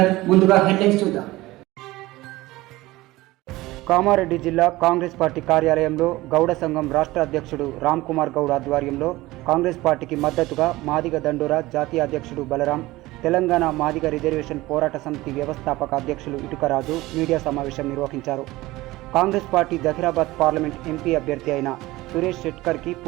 ముందుగా headlines చూద్దాం. కామారెడ్డి జిల్లా కాంగ్రెస్ పార్టీ కార్యాలయంలో గౌడ సంఘం రాష్ట్ర అధ్యక్షుడు రామ్ కుమార్ గౌడ్ ఆధ్వర్యంలో కాంగ్రెస్ పార్టీకి మద్దతుగా మాదిగ దండోరా జాతీయ అధ్యక్షుడు బలరాం, తెలంగాణ మాదిగ రిజర్వేషన్ పోరాట సమితి వ్యవస్థాపక అధ్యక్షులు ఇటుకరాజు మీడియా సమావేశం నిర్వహించారు. Congress party Zaheerabad parliament MP అభ్యర్థి అయిన సురేష్ షెట్కర్కి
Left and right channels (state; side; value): quieter; left; 18.9 dB